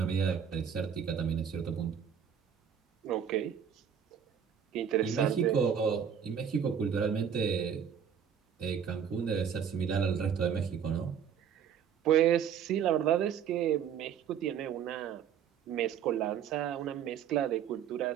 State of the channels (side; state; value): left; quieter; 8.1 dB